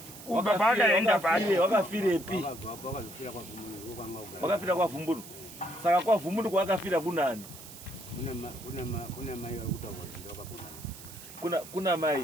baba akaenda pake wakafirepi wakafira kwa Vumbunu saka kwa Vumbunu kwakafira kunani kuna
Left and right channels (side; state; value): right; noise; hiss, 15 dB below the sound